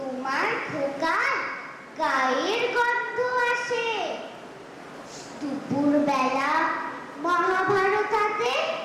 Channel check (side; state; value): both; identical; correlation 1.00